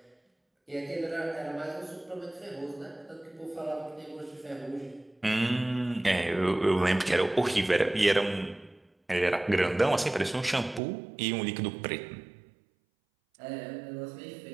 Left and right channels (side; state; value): left; drops out; at 10.8 s